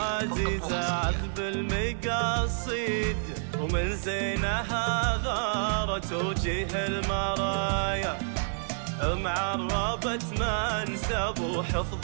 عذب المقاصيد، ومن زينها غارت وجيه المرايا. معربت منسب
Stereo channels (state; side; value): silent; left; digital silence